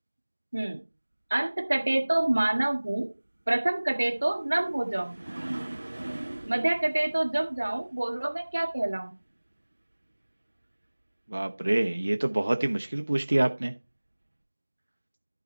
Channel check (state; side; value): inverted; both; correlation -1.00